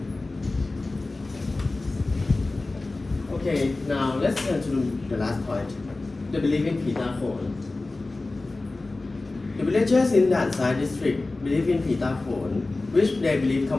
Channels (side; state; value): right; quieter; 3.2 dB